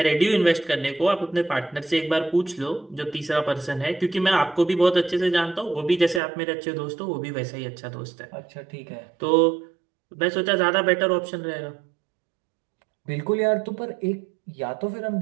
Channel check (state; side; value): drops out; left; at 6.2 s